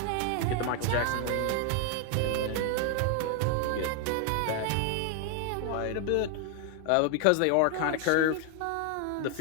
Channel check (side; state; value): both; different; correlation 0.00